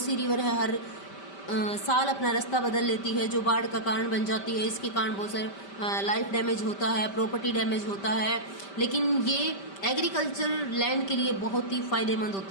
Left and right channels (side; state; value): right; late; 5.1 ms